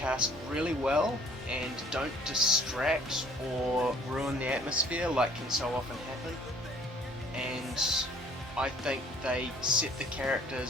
really well and don't distract or ruin the atmosphere like can so often happen. And I think they set the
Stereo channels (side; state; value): both; normal; correlation 0.56